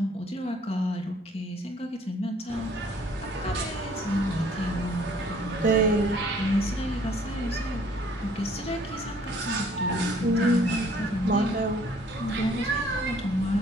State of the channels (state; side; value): normal; both; correlation 0.58